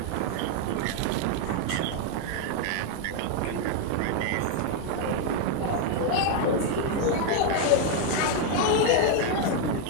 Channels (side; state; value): both; different; correlation 0.01